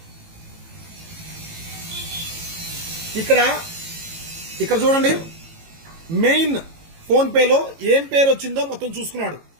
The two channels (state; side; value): late; left; 18 ms